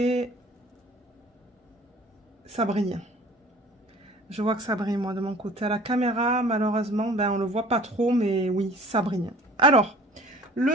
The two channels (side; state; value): both; normal; correlation 0.48